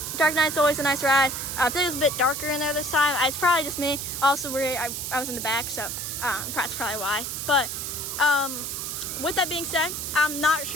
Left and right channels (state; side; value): noise; right; hiss, 5 dB below the sound